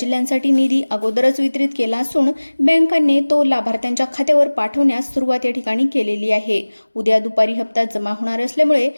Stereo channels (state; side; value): inverted; both; correlation -1.00